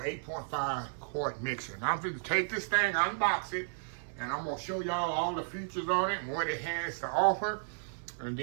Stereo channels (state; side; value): silent; left; digital silence